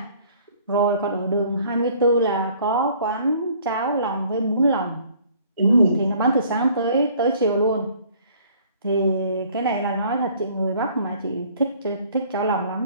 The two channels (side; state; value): both; inverted; correlation -0.56